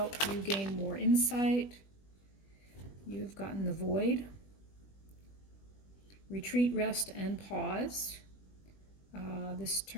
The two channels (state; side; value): late; right; 20 ms